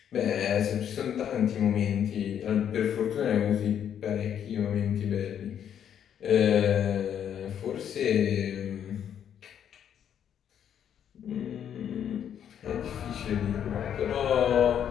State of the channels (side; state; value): right; quieter; 9.2 dB